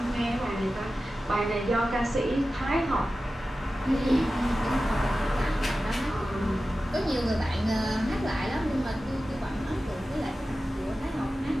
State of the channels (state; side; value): normal; both; correlation 0.94